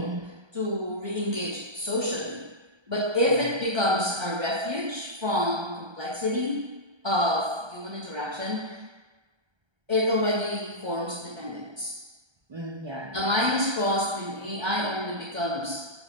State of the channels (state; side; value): late; left; 1.3 ms